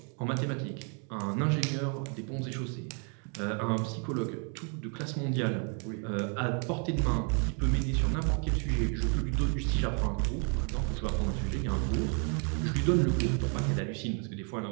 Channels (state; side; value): quieter; left; 39.6 dB